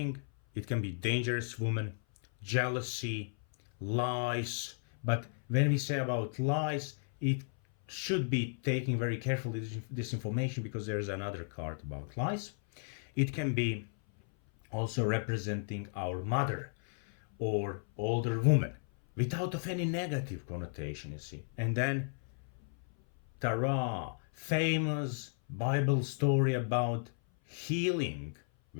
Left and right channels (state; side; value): silent; right; 55 dB below the other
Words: It can be dangerous woman, jealousy, lies. But when we say about lies, it should be taken very carefully, this information, because there is another card about lies. It can be also representing our mother or older woman without of any negative connotation, you see. And then Tara, famous Bible story about healing,